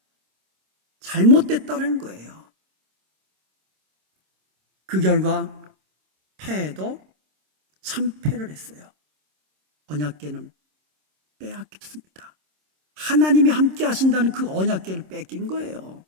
잘못됐다는 거예요. 그 결과 패해도 참패를 했어요. 언약궤는 빼앗겼습니다. 하나님이 함께 하신다는 그 언약궤를 뺏긴 거예요.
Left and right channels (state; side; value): late; left; 26 ms